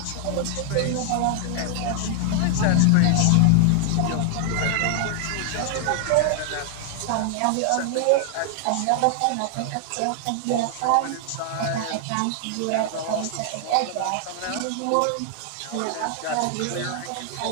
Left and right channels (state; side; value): different; both; correlation 0.00